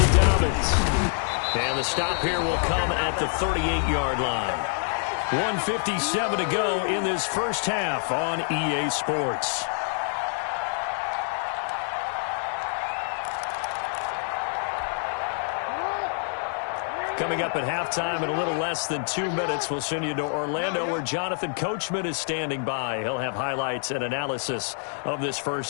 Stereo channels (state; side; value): silent; right; 61 dB below the other